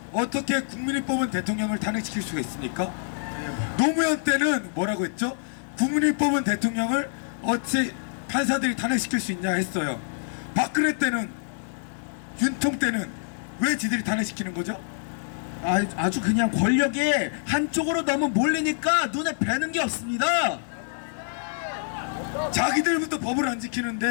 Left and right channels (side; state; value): right; silent; 61 dB below the other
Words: 어떻게 국민이 뽑은 대통령을 탄핵시킬 수가 있습니까? 노무현 때는 뭐라고 했죠? 국민이 뽑은 대통령을 어찌 판사들이 탄핵시킬 수 있냐 했어요. 박근혜 때는, 윤통 때는 왜 지들이 탄핵시키는 거죠? 아주 그냥 권력이 한쪽으로 너무 몰리니까 눈에 뵈는 게 없습니다. 자기들부터 법을 안